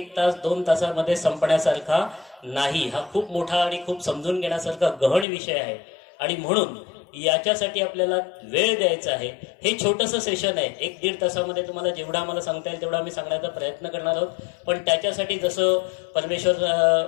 तास, 2 तासामध्ये संपण्यासारखा नाही. हा खूप मोठा आणि खूप समजून घेण्यासारखा गहन विषय आहे. आणि म्हणून याच्यासाठी आपल्याला वेळ द्यायचा आहे. हे छोटंसं सेशन आहे, 1-1.5 तासामध्ये तुम्हाला जेवढा आम्हाला सांगता येईल तेवढा आम्ही सांगण्याचा प्रयत्न करणार आहोत. पण त्याच्यासाठी जसं परमेश्वर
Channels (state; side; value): drops out; right; at 5.2 s